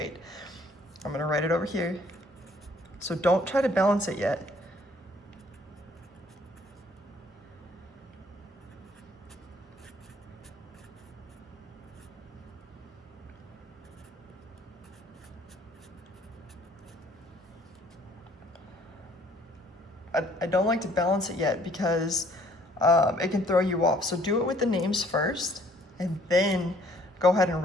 I'm going to write it over here, so don't try to balance it yet. I don't like to balance it yet because it can throw you off. So do it with the names first, and then go ahead and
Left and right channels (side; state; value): both; normal; correlation 0.60